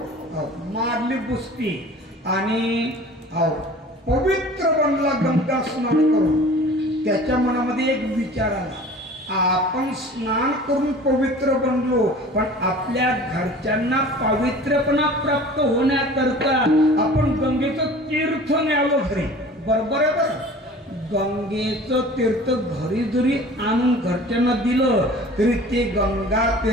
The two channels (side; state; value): both; normal; correlation 0.44